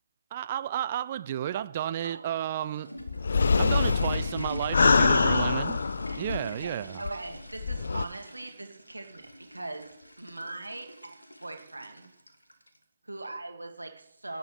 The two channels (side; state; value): both; inverted; correlation -0.81